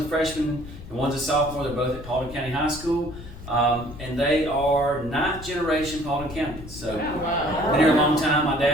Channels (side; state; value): left; noise; rumble, 14 dB below the sound